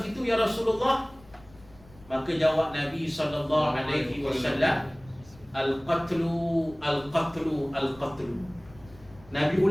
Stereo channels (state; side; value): noise; left; rumble, 24 dB below the sound